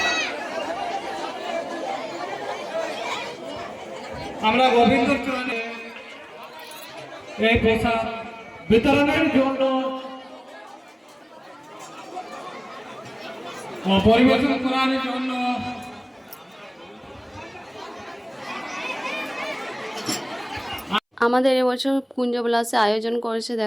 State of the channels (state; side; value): identical; both; correlation 1.00